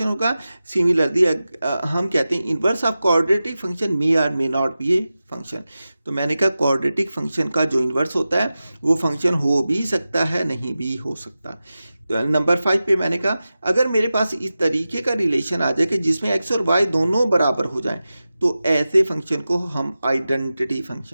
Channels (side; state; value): both; inverted; correlation -0.94